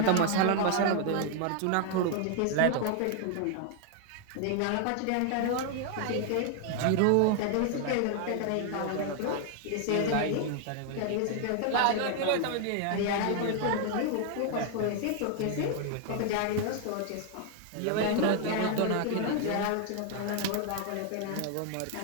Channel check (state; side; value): different; both; correlation 0.00